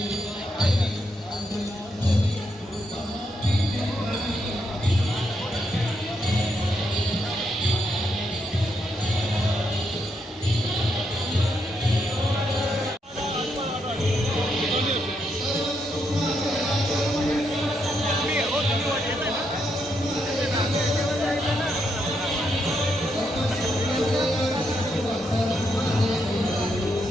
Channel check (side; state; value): both; normal; correlation 0.79